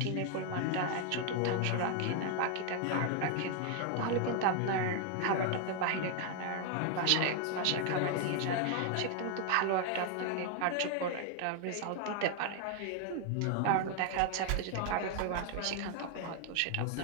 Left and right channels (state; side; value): different; both; correlation 0.00